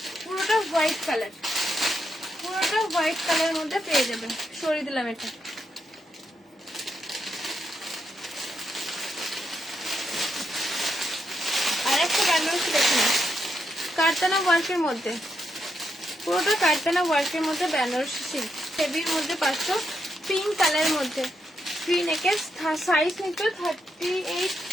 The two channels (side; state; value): both; normal; correlation 0.82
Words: পুরোটা হোয়াইট কালার, পুরোটা হোয়াইট কালারের মধ্যে পেয়ে যাবে। সরিয়ে দিলাম এটা। আর একটা বেনারসি দেখে না, কারতানা ওয়ার্কের মধ্যে, পুরোটা কারতানা ওয়ার্কের মধ্যে বেনারসি সিল্ক, হেভির মধ্যে পাচ্ছ, পিঙ্ক কালারের মধ্যে, ফ্রি নেকের, সাইজ নিচ্ছ 38,